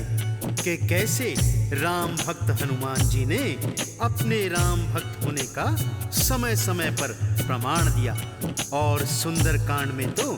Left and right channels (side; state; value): both; identical; correlation 1.00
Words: कि कैसे राम भक्त हनुमान जी ने अपने राम भक्त होने का समय समय पर प्रमाण दिया। और सुंदर कांड में तो